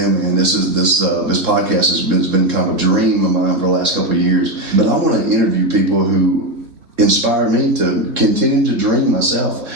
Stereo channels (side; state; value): left; late; 3.6 ms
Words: man. This podcast has been kind of a dream of mine for the last couple of years. But I want to interview people who inspire me to continue to dream myself.